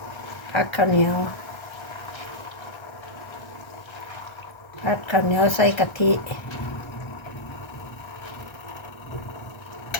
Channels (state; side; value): late; right; 1.3 ms